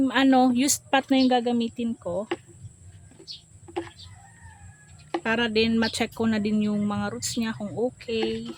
used pot na yung gagamitin ko. Para din ma-check ko na din yung mga roots niya kung okay.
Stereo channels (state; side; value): identical; both; correlation 1.00